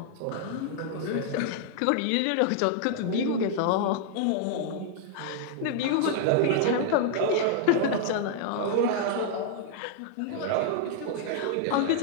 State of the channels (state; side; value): different; both; correlation -0.01